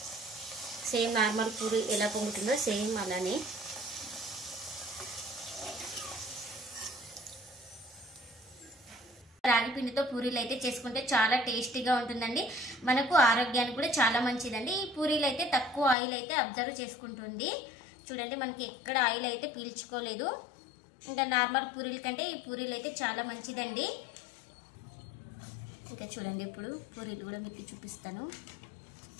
సేమ్ నార్మల్ పూరి ఎలా పొంగుతుందో సేమ్ అలానే. రాగి పిండితో పూరీలు అయితే చేసుకుంటే చాలా టేస్టీగా ఉంటుందండి. మనకు ఆరోగ్యానికి కూడా చాలా మంచిదండి. ఈ పూరీలు అయితే తక్కువ ఆయిల్ అయితే అబ్జర్వ్ చేసుకుంటుంది. చూడండి మనకి ఎక్కడ ఆయిల్ అయితే పీల్చుకోలేదు. ఇంకా నార్మల్ పూరీల కంటే ఈ పూరీలు అయితే చాలా మంచిదండి. ఇంకా చూడండి ఇప్పుడు పూరీలు కూడా మీకు చూపిస్తాను.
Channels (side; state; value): right; drops out; at 16.0 s